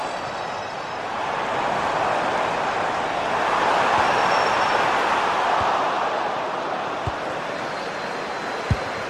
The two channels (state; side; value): identical; both; correlation 1.00